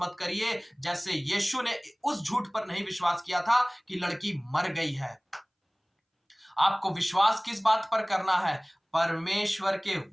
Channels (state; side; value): identical; both; correlation 1.00